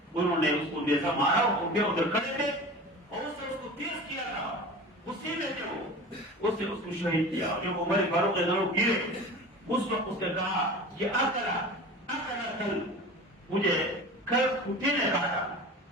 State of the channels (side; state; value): both; normal; correlation 0.35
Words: انہوں نے اس کو جیسا مارا، ادھر کھڑے تھے اور اس نے اس کو تیز کیا تھا، غصے میں تھے وہ، اس نے اس کو شہید کیا. جب عمر فاروق گرے اس وقت اس نے کہا کہ اکلا کل مجھے کل کتے نے کاٹا،